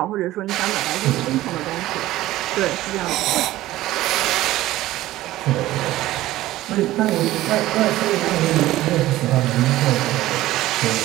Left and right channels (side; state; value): left; quieter; 15.8 dB